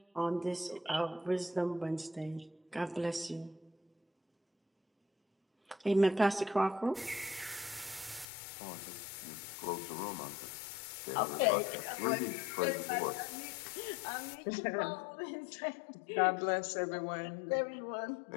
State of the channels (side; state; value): right; drops out; at 8.2 s